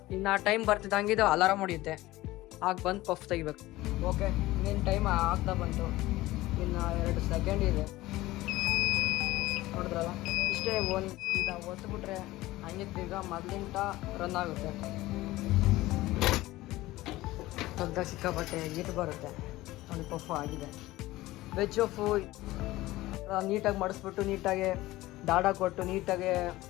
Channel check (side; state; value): right; quieter; 17.8 dB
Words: ಇನ್ನು ಟೈಮ್ ಬರ್ತಿದ್ದಂಗೆ ಇದು ಅಲಾರಾಮ್ ಹೊಡಿಯುತ್ತೆ. ಆಗ ಬಂದು ಪಫ್ ತೆಗಿಬೇಕು. ಓಕೆ, ಇನ್ನೇನು ಟೈಮ್ ಆಗ್ತಾ ಬಂತು. ಇನ್ನು 2 ಸೆಕೆಂಡ್ ಇದೆ. ನೋಡಿದ್ರಲ್ಲ, ಇಷ್ಟೇ. ಈಗ ಒತ್ತುಬಿಟ್ರೆ ಹಂಗೆ ಈಗ ಮೊದಲಿಂದ ರನ್ ಆಗುತ್ತೆ. ಸ್ವಲ್ಪ ಸಿಕ್ಕಾಪಟ್ಟೆ ಹೀಟ್ ಬರುತ್ತೆ. ಒಂದು ಪಫು ಆಗಿದೆ. ವೆಜ್ ಪಫು ನೀಟಾಗಿ ಮಡಿಸ್ಬಿಟ್ಟು, ನೀಟಾಗಿ ದಾಡ ಕೊಟ್ಟು, ನೀಟಾಗಿ